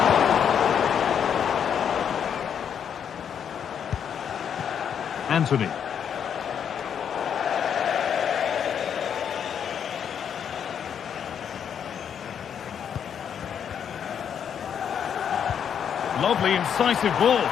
Anthony. Lovely, incisive ball.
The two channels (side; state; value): right; quieter; 8.1 dB